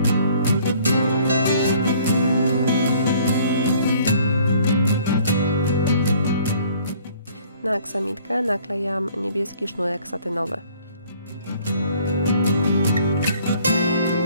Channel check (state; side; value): inverted; both; correlation -0.57